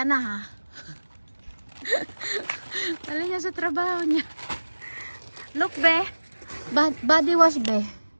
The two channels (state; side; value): inverted; both; correlation -1.00